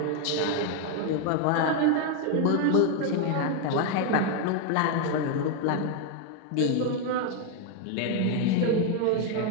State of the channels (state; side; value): different; both; correlation 0.01